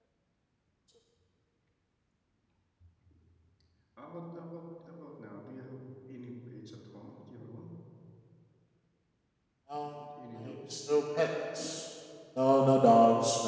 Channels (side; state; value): both; identical; correlation 1.00